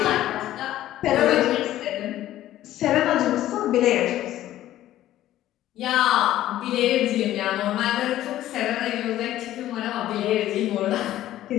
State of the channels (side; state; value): right; quieter; 13.6 dB